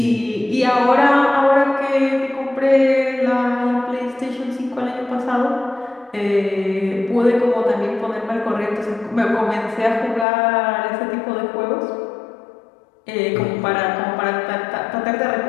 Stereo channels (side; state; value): right; drops out; at 10.2 s